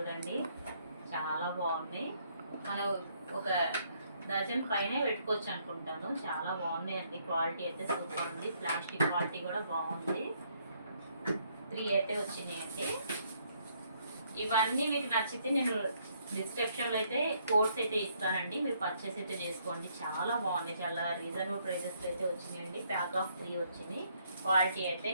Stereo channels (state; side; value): inverted; both; correlation -0.70